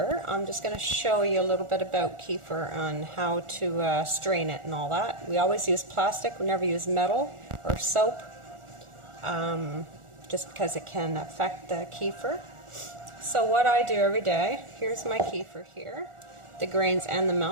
I'm just going to show you a little bit about kefir on how to strain it and all that. We always use plastic, we never use metal or soap, just because it can affect the kefir. So what I do every day, here's my kefir here, the grains and the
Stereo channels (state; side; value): late; left; 1.4 ms